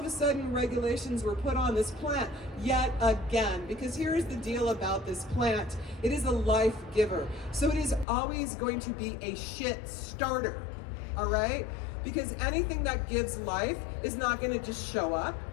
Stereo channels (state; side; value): drops out; right; at 8.1 s